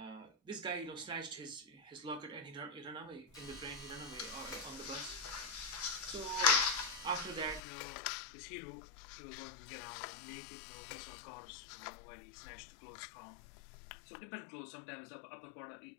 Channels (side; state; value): right; drops out; at 7.6 s